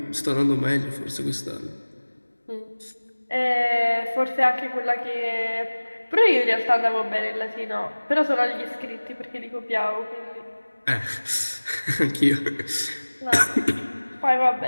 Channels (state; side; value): inverted; both; correlation -1.00